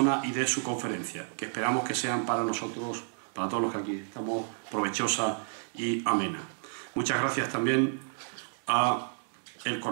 y de su conferencia, que esperamos que sean para nosotros, para todos los que aquí estamos, provechosa y amena. Muchas gracias también a el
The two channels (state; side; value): silent; left; 57 dB below the other